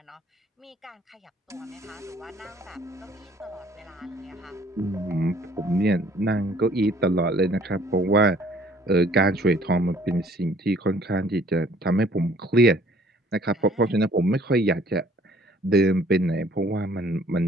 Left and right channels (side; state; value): both; normal; correlation 0.57